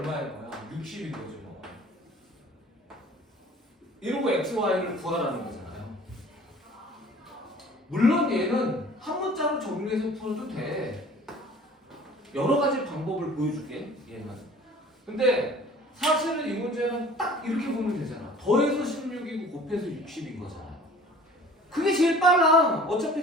거야? 60인 거죠. 뭐. 이러고 X, Y를 구하라는 거잖아요. 물론 얘는 한 문자로 정리해서 풀어도 돼. 여러 가지 방법을 보여줄게. 얘는. 근데 사실은 이 문제는 딱 이렇게 보면 되잖아. 더해서 16이고 곱해서 60인 거잖아요. 그게 제일 빨라. 어차피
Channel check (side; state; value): both; normal; correlation 0.48